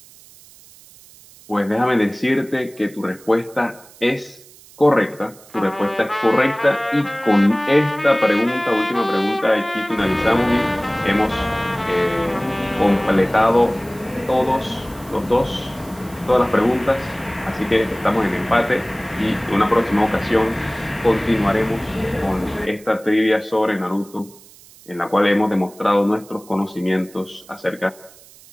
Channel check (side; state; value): right; noise; hiss, 23 dB below the sound